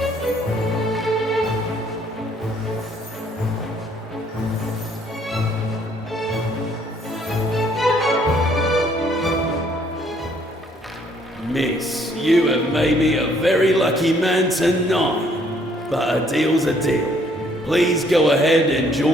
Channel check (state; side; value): normal; both; correlation 0.64